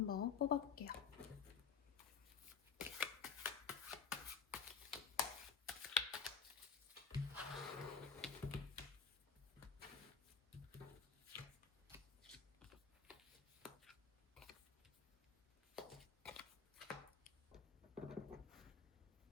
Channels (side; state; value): right; quieter; 6.5 dB